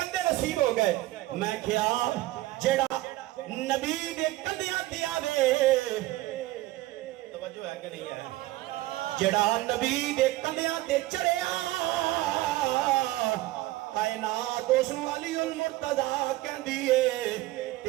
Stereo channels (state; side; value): quieter; left; 17.5 dB